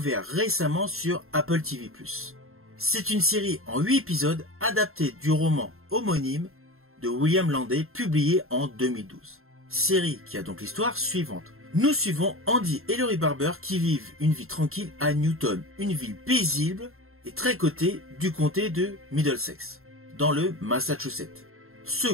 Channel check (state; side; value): late; left; 0.62 ms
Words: récemment sur Apple TV+. C'est une série en 8 épisodes adaptée du roman homonyme de William Landay, publié en 2012. Série qui a donc l'histoire suivante. Nous suivons Andy et Laurie Barber qui vivent une vie tranquille à Newton, une ville paisible et très cotée du comté de Middlesex, dans le Massachusetts. Ce